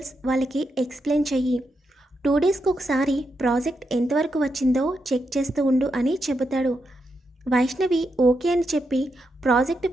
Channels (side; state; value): both; normal; correlation 0.84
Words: వాళ్ళకి ఎక్స్ప్లెయిన్ చెయ్యి. 2 డేస్కి ఒకసారి ప్రాజెక్ట్ ఎంతవరకు వచ్చిందో చెక్ చేస్తూ ఉండు అని చెబుతాడు. వైష్ణవి ఓకే అని చెప్పి ప్రాజెక్ట్